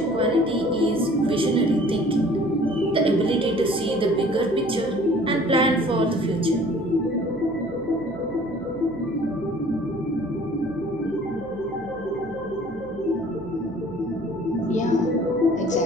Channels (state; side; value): noise; left; hum, 18 dB below the sound